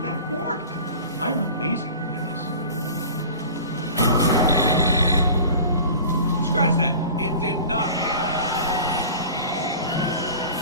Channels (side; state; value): both; inverted; correlation -0.39